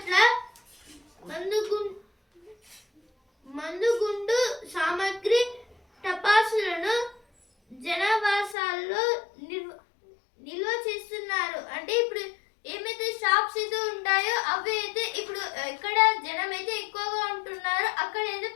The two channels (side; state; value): right; drops out; at 8.6 s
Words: మందుగుండు సామాగ్రి టపాసులను జనాభా